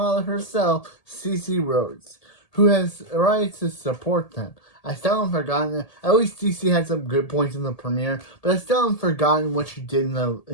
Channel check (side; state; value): right; late; 1.8 ms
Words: herself, Cece Rhodes, who has arrived to support them. I still haven't forgotten. At least Cece had some good points in the premiere, but I still haven't forgotten what she did in